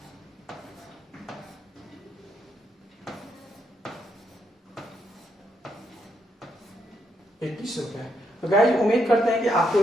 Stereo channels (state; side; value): normal; both; correlation 0.77